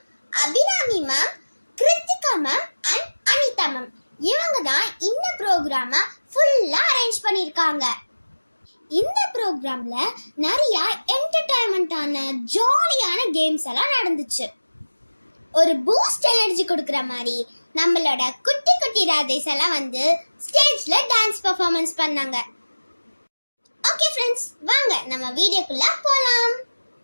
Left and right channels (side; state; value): both; inverted; correlation -1.00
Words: Abirami ma'am, Kiruthika ma'am and Anitha ma'am இவங்க தான் இந்த ப்ரோக்ராமை ஃபுல்லா அரேஞ்ச் பண்ணிருக்காங்க. இந்த ப்ரோக்ராம்ல நிறைய என்டர்டைன்மெண்டான ஜாலியான கேம்ஸ் எல்லாம் நடந்துச்சு. ஒரு பூஸ்ட் எனர்ஜி கொடுக்குற மாதிரி நம்மளோட குட்டி குட்டி ராதேஸ் எல்லாம் வந்து ஸ்டேஜ்ல டான்ஸ் பெர்ஃபார்மன்ஸ் பண்ணாங்க. ஓகே ஃப்ரெண்ட்ஸ், வாங்க நம்ம வீடியோக்குள்ள போலாம்.